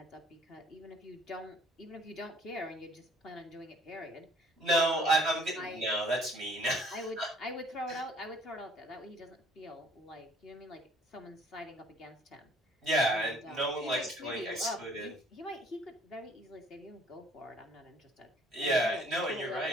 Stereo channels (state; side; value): normal; both; correlation 0.57